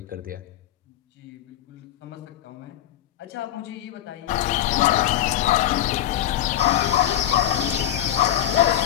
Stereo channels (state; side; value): quieter; right; 12.3 dB